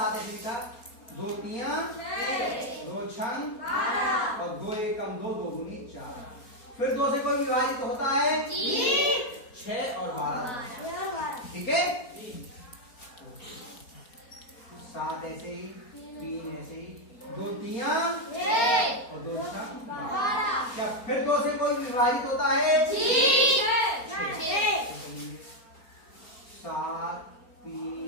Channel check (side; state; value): right; late; 4.3 ms